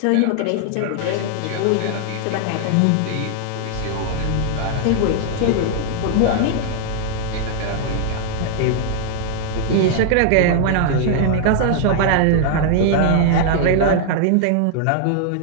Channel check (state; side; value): different; both; correlation 0.00